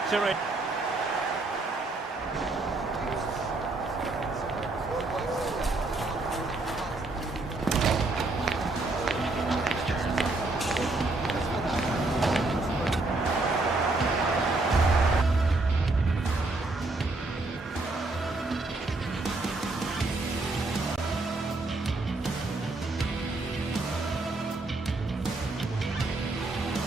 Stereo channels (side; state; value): left; quieter; 3.1 dB